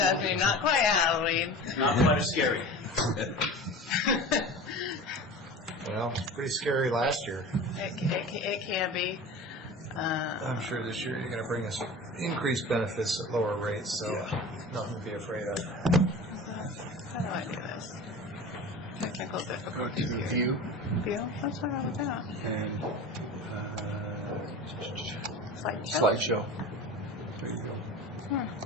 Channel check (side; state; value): both; normal; correlation 0.35